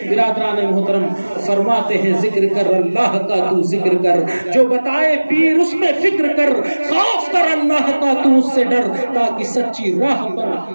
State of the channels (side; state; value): both; inverted; correlation -1.00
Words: برادران محترم فرماتے ہیں ذکر کر اللہ کا تو ذکر کر، جو بتائے پیر اس میں فکر کر، خوف کر اللہ کا تو اس سے ڈر، تاکہ سچی راہ پر